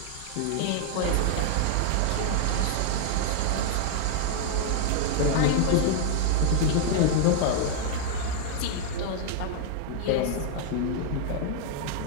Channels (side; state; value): both; different; correlation -0.01